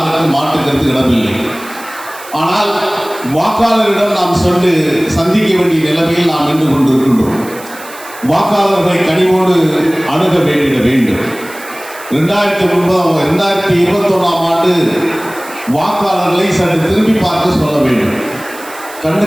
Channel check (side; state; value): right; noise; hiss, 17 dB below the sound